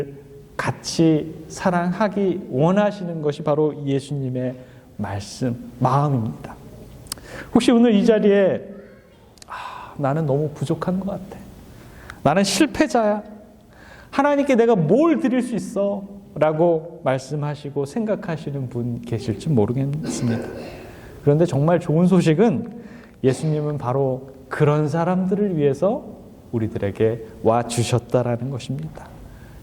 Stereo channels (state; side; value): identical; both; correlation 1.00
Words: 같이 사랑하기 원하시는 것이 바로 예수님의 마음입니다. 혹시 오늘 이 자리에 나는 너무 부족한 것 같아. 나는 실패자야. 하나님께 내가 뭘 드릴 수 있어? 라고 말씀하시고 생각하시는 분 계실지 모르겠습니다. 그런데 정말 좋은 소식은 예수님은 바로 그런 사람들을 위해서 우리들에게 와주셨다라는 것입니다.